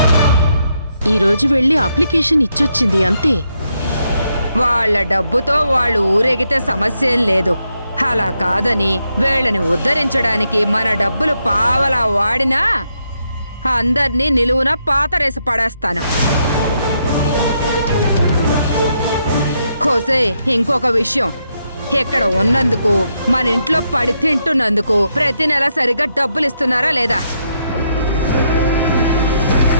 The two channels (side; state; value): both; inverted; correlation -0.79